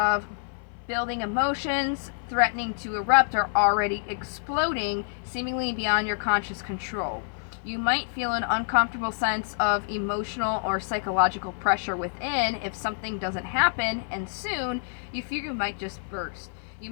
building emotions, threatening to erupt or already exploding, seemingly beyond your conscious control. You might feel an uncomfortable sense of emotional or psychological pressure within if something doesn't happen, and soon you fear you might just burst. You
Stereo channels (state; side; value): silent; right; 57 dB below the other